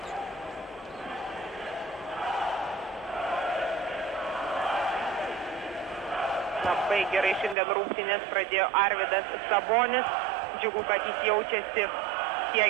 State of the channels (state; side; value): drops out; left; at 7.6 s